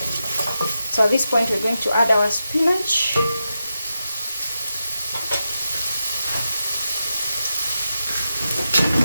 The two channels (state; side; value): inverted; both; correlation -0.89